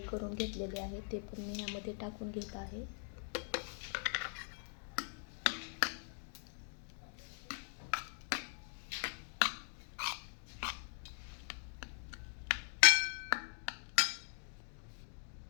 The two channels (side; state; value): right; silent; 50 dB below the other